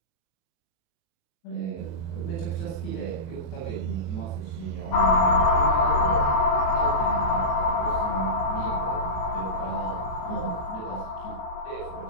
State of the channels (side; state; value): right; late; 18 ms